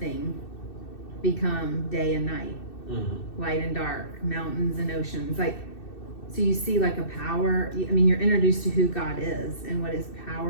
become day and night, light and dark, mountains and oceans. Like, so you see like a power. I mean, you're introduced to who God is and what his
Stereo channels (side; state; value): right; late; 2.6 ms